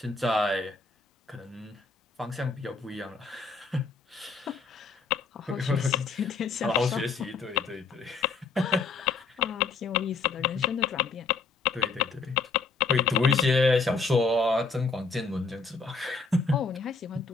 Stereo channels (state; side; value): quieter; right; 4.4 dB